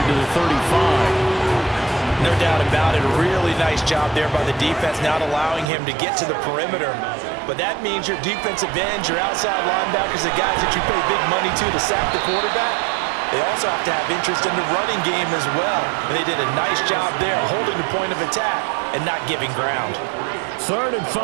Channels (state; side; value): drops out; left; at 5.7 s